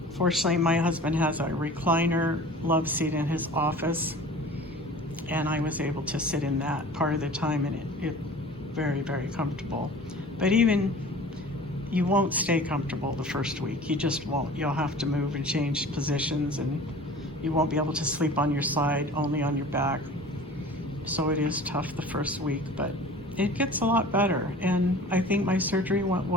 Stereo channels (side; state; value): both; normal; correlation 0.42